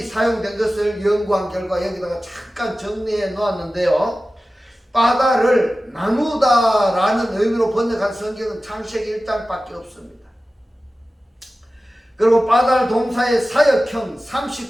사용된 것을 연구한 결과 여기다가 잠깐 정리해 놓았는데요, 빠달을 나누다라는 의미로 번역한 성경은 창세기 1장밖에 없습니다. 그리고 빠달 동사의 사역형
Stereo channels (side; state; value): both; normal; correlation 0.95